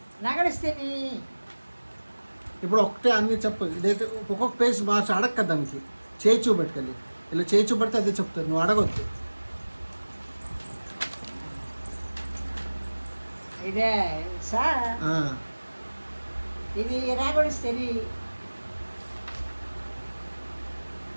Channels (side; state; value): both; inverted; correlation -1.00